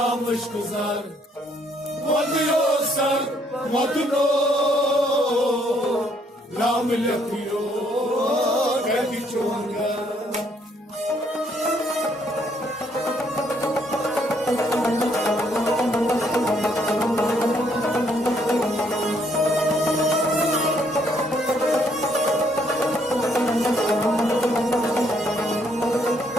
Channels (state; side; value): normal; both; correlation 0.69